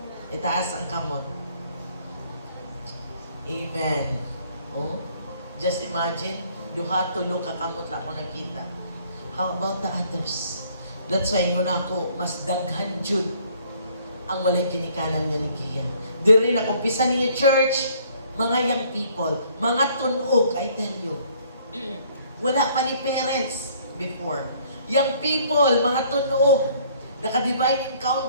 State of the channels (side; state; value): both; inverted; correlation -0.60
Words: Itaas ang kamot. Amen. Oh, just imagine, duha tulo ka kamot na ako nakita. How about the others? That's why yun ako, mas daghan jud ang walay ginikanan nga ni Kiya. Diri na kumpisa ninyo church, mga young people, mga tunog, I tell you. Wala pa ni parents before. Young people, mga tunog, naka-divine